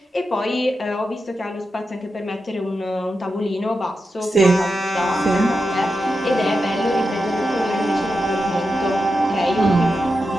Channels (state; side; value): normal; both; correlation 0.89